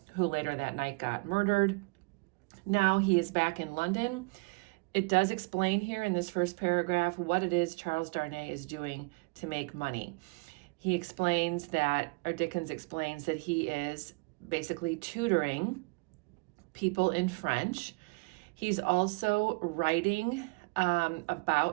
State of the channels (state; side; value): quieter; left; 29.7 dB